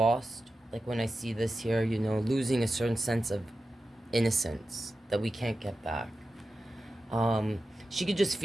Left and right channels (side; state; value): both; normal; correlation 0.92